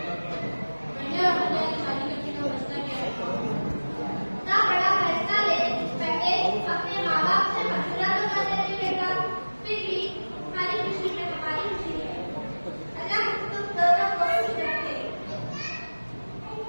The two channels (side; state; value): both; inverted; correlation -1.00